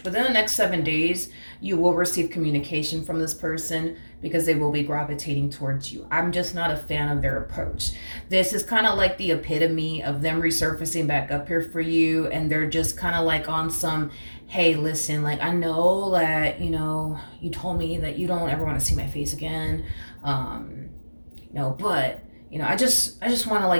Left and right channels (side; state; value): both; inverted; correlation -1.00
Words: Within the next 7 days, you will receive communication from this person, because they will be gravitating towards you. I'm just not a fan of their approach. This is kind of like the epitome of them resurfacing back up here for you, and they're just kind of like on some, hey, listen, like, I know that, you know, you told me that you don't ever want to see my face again, you know, but, you know, I just want to